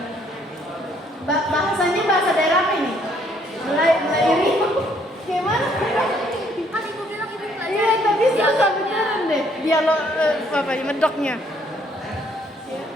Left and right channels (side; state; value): both; normal; correlation 0.66